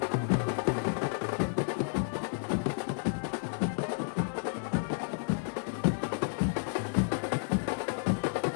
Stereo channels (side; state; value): right; silent; digital silence